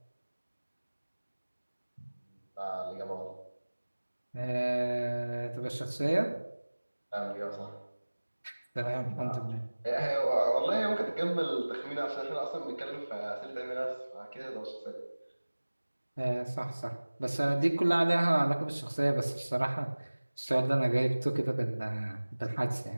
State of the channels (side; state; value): both; inverted; correlation -1.00